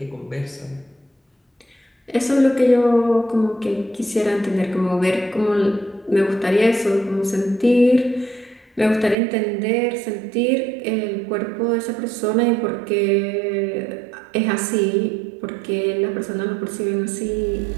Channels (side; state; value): left; drops out; at 9.2 s